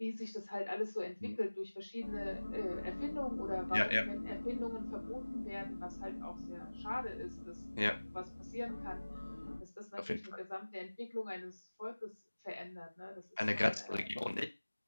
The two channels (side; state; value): both; inverted; correlation -1.00